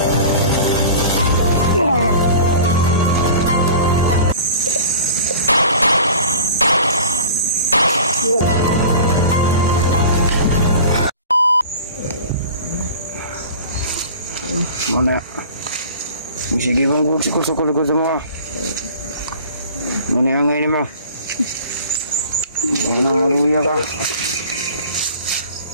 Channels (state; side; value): inverted; both; correlation -0.42